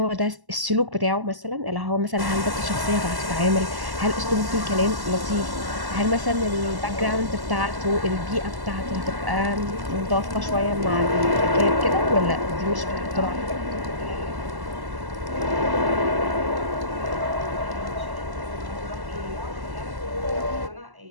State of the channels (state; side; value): late; left; 1.1 ms